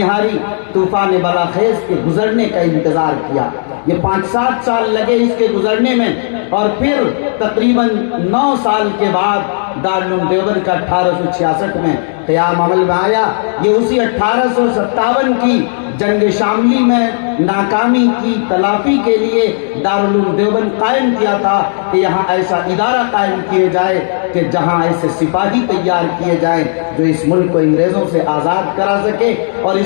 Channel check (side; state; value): right; silent; digital silence